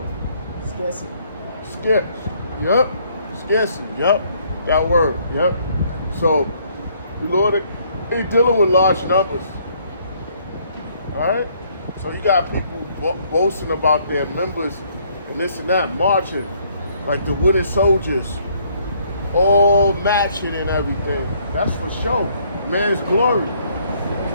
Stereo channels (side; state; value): both; inverted; correlation -0.65